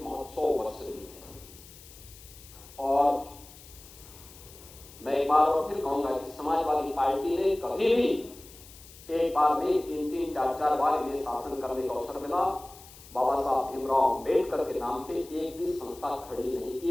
महोत्सव वर्ष भी है। और मैं एक बार और फिर कहूंगा कि समाजवादी पार्टी ने कभी भी एक बार नहीं, 3-3, 4-4 बार इन्हें शासन करने का अवसर मिला, बाबा साहब भीमराव अंबेडकर के नाम पे एक भी संस्था खड़ी नहीं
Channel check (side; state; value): left; noise; hiss, 20 dB below the sound